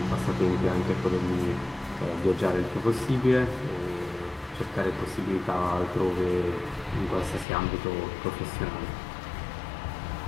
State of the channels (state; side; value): drops out; right; at 7.5 s